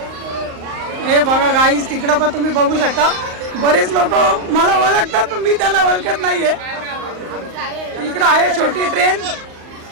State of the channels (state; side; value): late; left; 38 ms